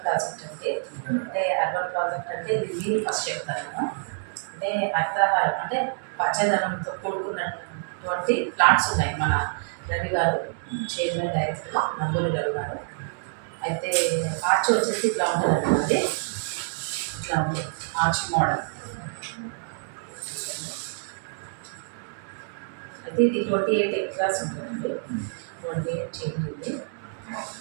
ప్రాజెక్ట్ అంటే అర్బన్ ప్రాజెక్ట్ అంటే ఇది మీరు ఫస్ట్ చెప్తాను. అంటే హరితహారం అంటే పచ్చదనంతో కూడుకున్నటువంటి ప్లాట్స్ ఉన్నాయి. మన రవి గారు చైర్మన్ డైరెక్టర్ నందూరి రవి గారు. అయితే ఆర్చ్ వచ్చేసి ఇట్లా ఉంటుందండి, ఇట్లా ఉంది ఆర్చ్ మోడల్. అయితే ఇది 28 ఎకరాస్ ఉంటుందండి, 28 చేంజ్ ఉంది.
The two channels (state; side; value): silent; left; digital silence